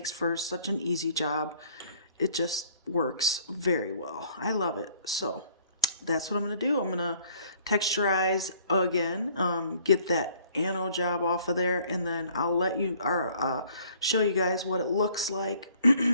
for such an easy job. It just works very well. I love it. So that's what I'm going to do. I'm going to texturize again, get that anode job off of there, and then I'll let you show you guys what it looks like,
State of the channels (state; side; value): inverted; both; correlation -0.58